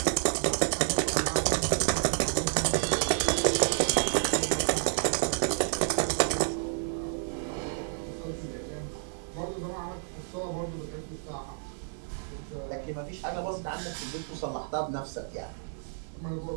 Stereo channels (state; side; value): silent; left; digital silence